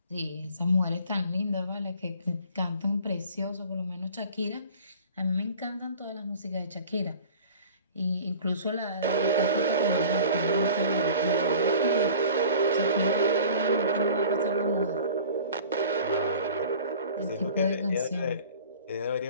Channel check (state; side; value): inverted; both; correlation -0.45